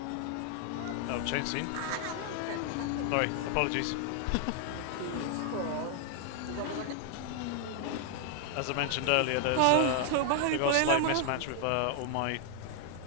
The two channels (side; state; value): both; different; correlation 0.00